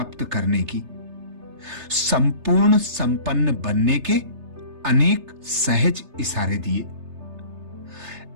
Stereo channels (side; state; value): left; late; 3.3 ms